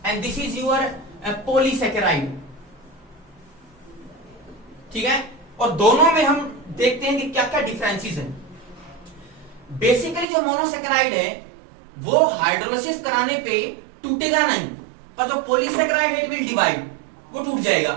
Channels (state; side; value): drops out; left; at 10.2 s